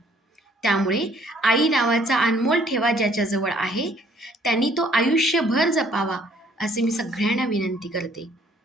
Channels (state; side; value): normal; both; correlation 0.61